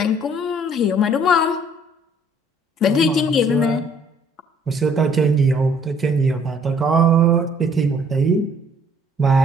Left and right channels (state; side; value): normal; both; correlation 0.60